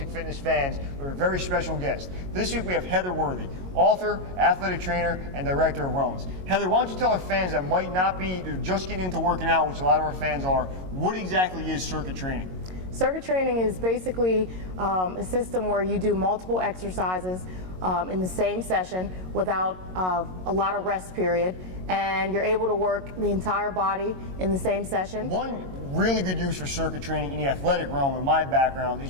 fitness fans, we have a very special guest. This week we have Heather Worthy, author, athletic trainer, and director of wellness. Heather, why don't you tell our fans that might not be just getting into working out, which a lot of our fans are, what exactly is circuit training? Circuit training is basically a system where you do multiple exercises in the same session without a lot of rest period, and you're able to work the entire body in the same session. One really good use for circuit training in the athletic realm, in my background,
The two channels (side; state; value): left; late; 22 ms